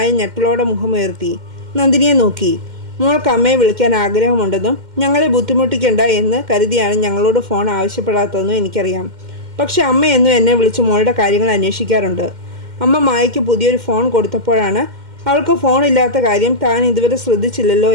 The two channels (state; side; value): late; left; 2.1 ms